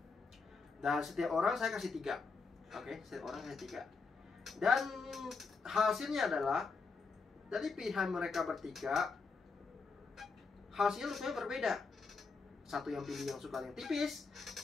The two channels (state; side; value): quieter; right; 4.6 dB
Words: Dan setiap orang saya kasih 3. Oke, setiap orang kasih 3. Dan hasilnya adalah dari pilihan mereka bertiga, hasilnya rupanya berbeda. Satu yang pilih yang suka yang tipis,